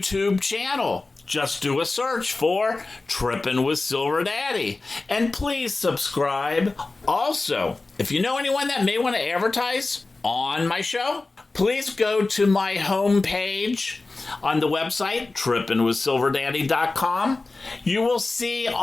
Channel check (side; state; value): right; quieter; 3.4 dB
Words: channel. Just do a search for Trippin' with Silver Daddy. And please subscribe. Also, if you know anyone that may want to advertise on my show, please go to my homepage on the website, trippinwithsilverdaddy.com. You will see